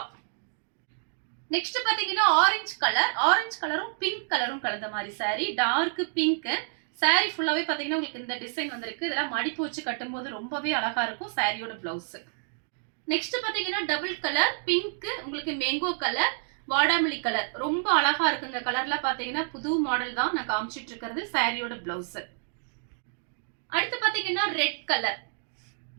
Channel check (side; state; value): left; silent; digital silence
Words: நெக்ஸ்ட் பாத்தீங்கன்னா ஆரஞ்சு கலரும் பிங்க் கலரும் கலந்த மாதிரி சாரி. டார்க் பிங்க் சாரி ஃபுல்லாவே பாத்தீங்கன்னா உங்களுக்கு இந்த டிசைன் வந்திருக்கு. இதெல்லாம் மடிப்பு வச்சு கட்டும்போது ரொம்பவே அழகா இருக்கும். சாரியோட பிளவுஸ். நெக்ஸ்ட் பாத்தீங்கன்னா டபுள் கலர் பிங்க், உங்களுக்கு மேங்கோ கலர், வாடாமல்லி கலர். ரொம்ப அழகா இருக்கு இந்த கலர்ல. பாத்தீங்கன்னா புது மாடல் தான் நான் காமிச்சிட்டு இருக்கிறது. சாரியோட பிளவுஸ். அடுத்து பாத்தீங்கன்னா ரெட் கலர்.